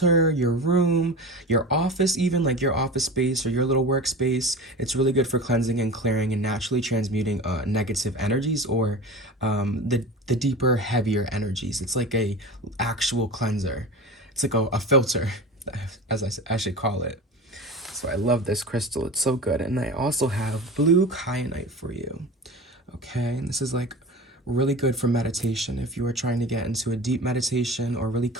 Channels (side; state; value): both; normal; correlation 0.32